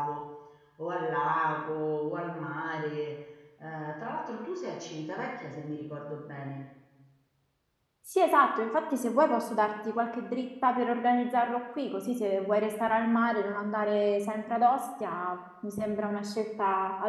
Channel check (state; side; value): identical; both; correlation 1.00